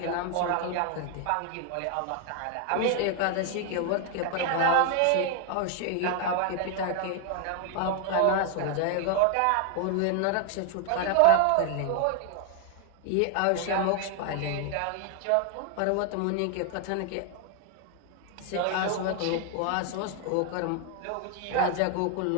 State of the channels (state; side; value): different; both; correlation 0.00